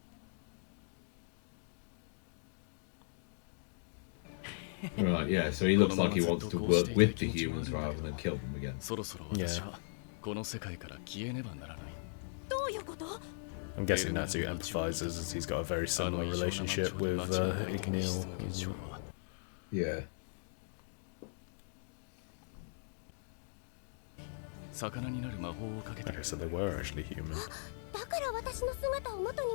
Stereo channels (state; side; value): silent; right; digital silence